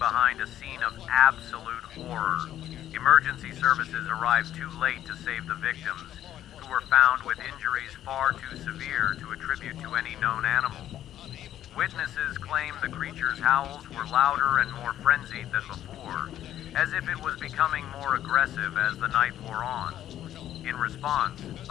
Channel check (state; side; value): quieter; right; 11.7 dB